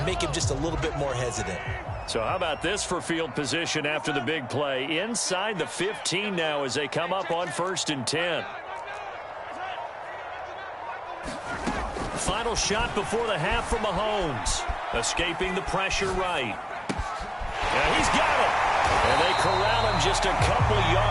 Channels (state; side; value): identical; both; correlation 1.00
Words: make him just a little bit more hesitant. So how about this for field position after the big play? Inside the 15 now as they come up on 1st and 10. Final shot before the half from Mahomes. Escaping the pressure right. And he's got it. And they corral him just a couple